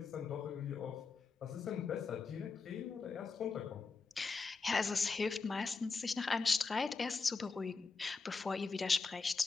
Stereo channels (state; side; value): quieter; right; 4.5 dB